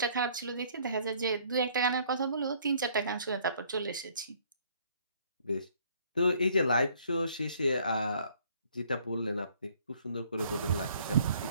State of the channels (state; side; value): inverted; both; correlation -0.61